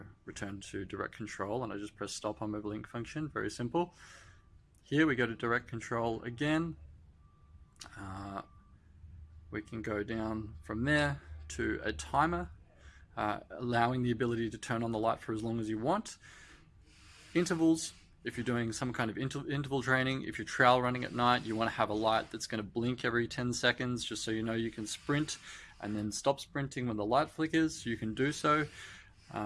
return to direct control, and I just press stop on my blink function, very simple. Here we go to direct control again. We can go down from there to a timer, allowing the ability to turn on the light for as long as you want. Intervals, if you're doing some kind of interval training, if you're trail running at night, you want to have a light that's going to blink every 10 seconds, just so you know you can sprint and then stop sprinting when the light flickers, you can do so.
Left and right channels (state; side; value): identical; both; correlation 1.00